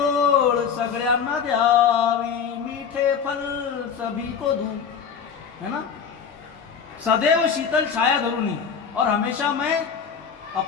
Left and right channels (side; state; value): right; quieter; 6.8 dB